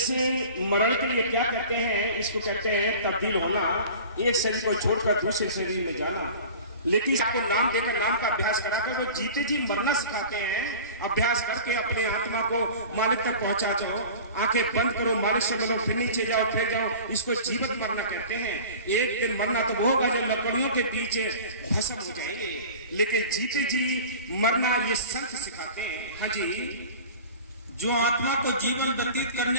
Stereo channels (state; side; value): inverted; both; correlation -0.38